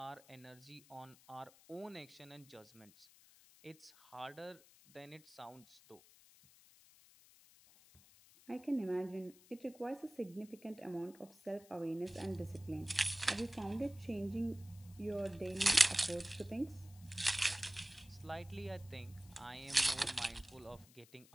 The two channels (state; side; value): noise; left; hiss, 24 dB below the sound